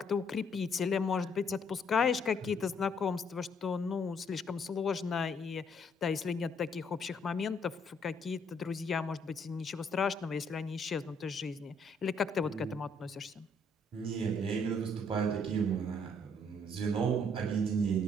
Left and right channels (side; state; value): both; normal; correlation 0.67